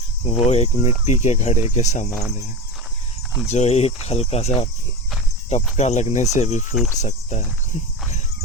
वो एक मिट्टी के घड़े के समान है, जो एक हल्का सा टपका लगने से भी फूट सकता है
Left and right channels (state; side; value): normal; both; correlation 0.25